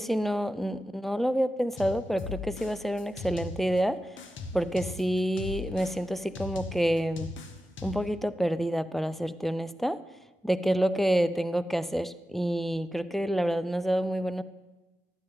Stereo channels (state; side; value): normal; both; correlation 0.92